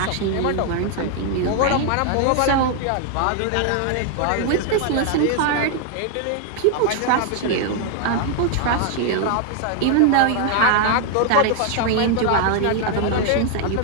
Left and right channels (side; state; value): both; different; correlation 0.00